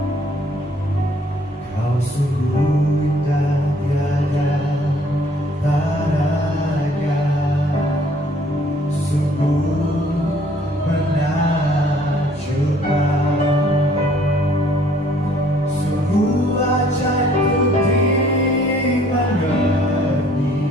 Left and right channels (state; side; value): normal; both; correlation 0.60